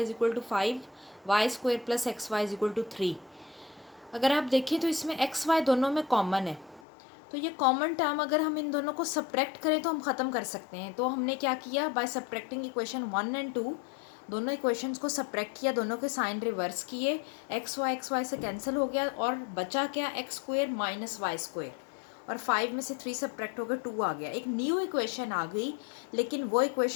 = 5, y² + xy = 3। अगर आप देखें तो इसमें xy दोनों में कॉमन है, तो ये कॉमन टर्म अगर हम इन दोनों को सब्ट्रैक्ट करें तो हम ख़त्म कर सकते हैं। तो हमने क्या किया, बाय सब्ट्रैक्टिंग इक्वेशन 1 और 2, दोनों इक्वेशंस को सब्ट्रैक्ट किया, दोनों के साइन रिवर्स किए, xy से कैंसिल हो गया और बचा क्या, x² - y², और 5 में से 3 सब्ट्रैक्ट हो गए, 2 आ गया। एक न्यू इक्वेशन आ गई, लेकिन वो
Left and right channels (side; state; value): right; drops out; at 6.8 s